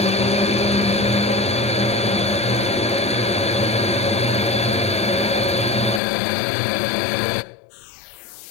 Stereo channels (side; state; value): right; drops out; at 6.0 s